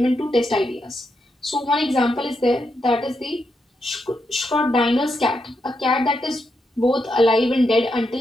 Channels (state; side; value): normal; both; correlation 0.83